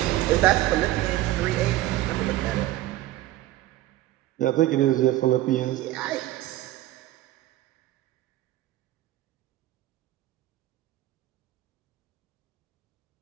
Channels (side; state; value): left; quieter; 15.6 dB